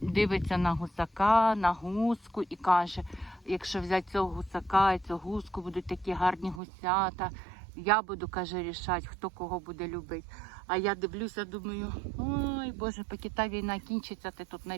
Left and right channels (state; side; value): drops out; left; at 6.6 s